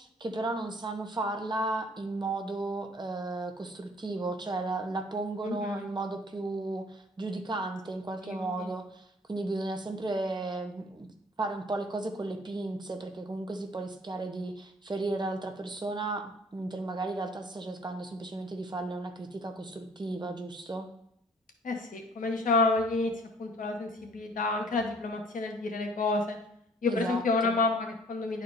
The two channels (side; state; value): both; normal; correlation 0.55